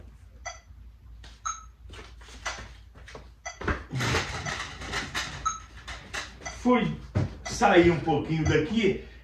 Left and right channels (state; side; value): identical; both; correlation 1.00